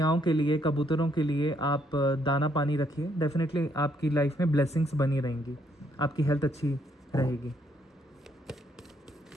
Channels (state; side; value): normal; both; correlation 0.71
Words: के लिए, कबूतरों के लिए आप दाना पानी रखिए। डेफिनेटली आपकी लाइफ में ब्लेसिंग्स बनी रहेंगी, आपकी हेल्थ अच्छी रहेगी।